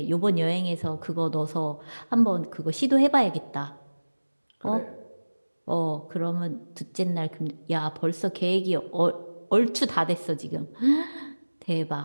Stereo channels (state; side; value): inverted; both; correlation -1.00